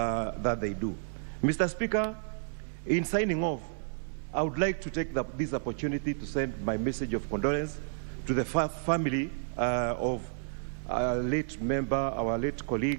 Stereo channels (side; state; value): left; silent; digital silence